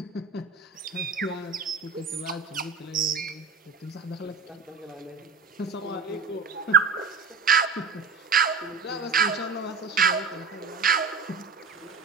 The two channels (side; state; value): left; quieter; 5.0 dB